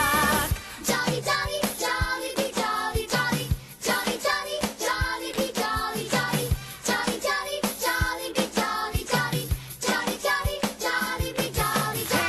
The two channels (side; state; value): both; identical; correlation 1.00